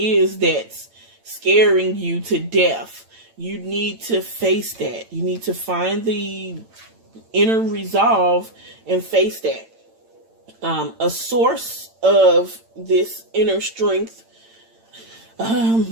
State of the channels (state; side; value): late; left; 8.9 ms